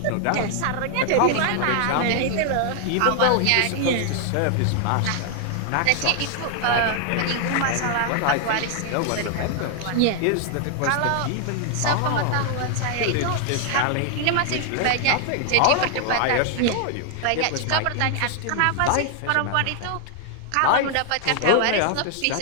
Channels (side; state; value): both; different; correlation 0.00